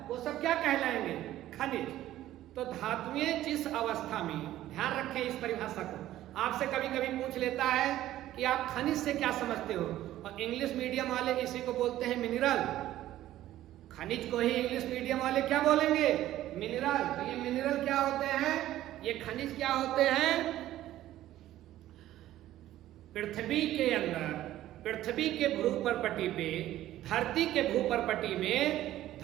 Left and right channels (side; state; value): left; quieter; 13.9 dB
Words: वो सब क्या कहलाएंगे? खनिज। तो धातुएं जिस अवस्था में, ध्यान रखें इस परिभाषा को, आपसे कभी कभी पूछ लेता है कि आप खनिज से क्या समझते हो, और इंग्लिश मीडियम वाले इसी को बोलते हैं मिनरल। खनिज को ही इंग्लिश मीडियम वाले क्या बोलेंगे? मिनरल। तो ये मिनरल क्या होते हैं? ये खनिज क्या होते हैं? पृथ्वी के अंदर, पृथ्वी के भ्रूपटपटी पे धरती के भूपर्पटी में